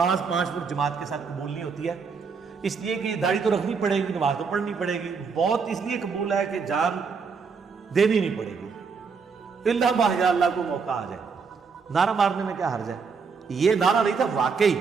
5 وقت جماعت کے ساتھ قبول نہیں ہوتی ہے، اس لیے کہ داڑھی تو رکھنی پڑے گی، نماز تو پڑھنی پڑے گی، موت اس لیے قبول ہے کہ جان دینی نہیں پڑے گی، اللہ بحجا اللہ کو موقع آ جائے۔ نعرہ مارنے میں کیا حرج ہے؟ یہ نعرہ نہیں تھا، واقعی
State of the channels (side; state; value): left; quieter; 5.4 dB